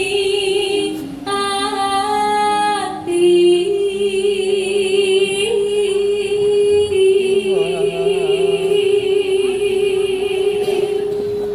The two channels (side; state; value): both; identical; correlation 1.00